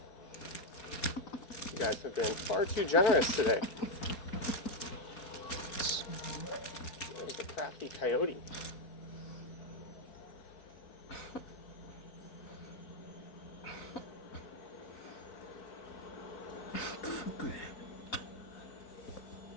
You guys have been far too generous today. There's the crafty coyote.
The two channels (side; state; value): right; late; 4.6 ms